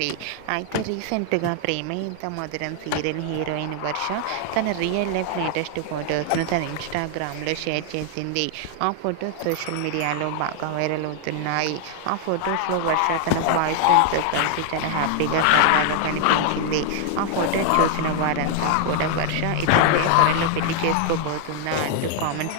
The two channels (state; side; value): different; both; correlation 0.00